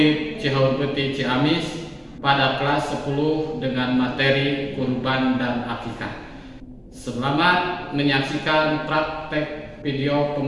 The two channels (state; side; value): identical; both; correlation 1.00